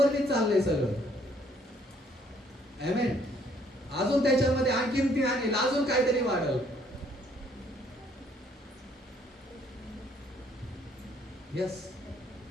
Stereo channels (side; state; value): both; normal; correlation 0.65